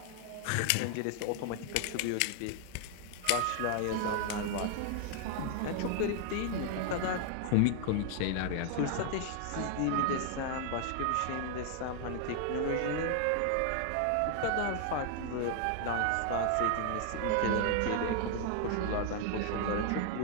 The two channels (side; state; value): both; different; correlation 0.00